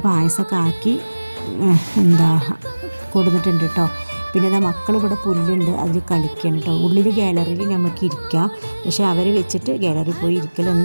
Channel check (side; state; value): both; inverted; correlation -1.00